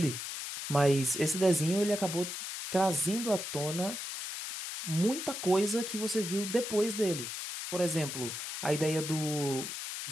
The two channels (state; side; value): noise; left; hiss, 6 dB below the sound